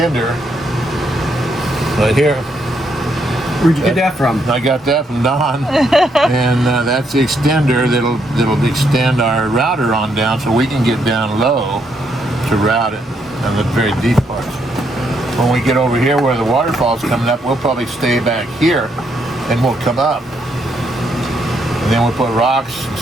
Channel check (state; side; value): normal; both; correlation 0.75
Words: right here. Where'd you get that from? I got that from Don, and that's the extender that'll extend our router on down, so we can get down low to route it on the very deep parts. When we get over here where the waterfall's coming up, we'll probably stay back here, and we'll come up, and then we'll put rocks and